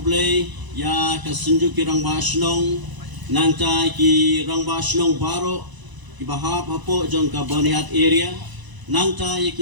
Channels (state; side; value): late; left; 1.0 ms